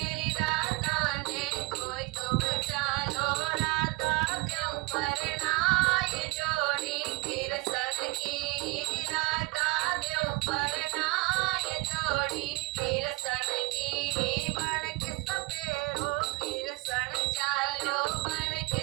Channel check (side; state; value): left; quieter; 23.7 dB